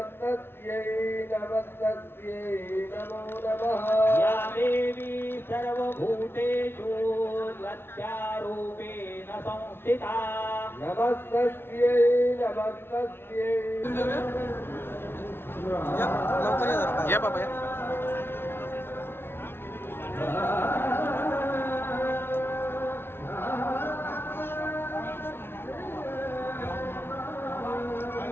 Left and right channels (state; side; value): late; right; 0.11 ms